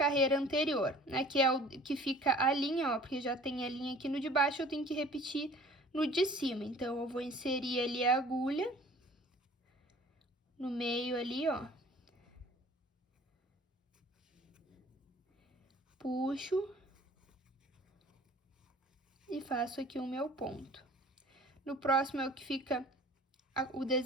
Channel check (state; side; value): normal; both; correlation 0.49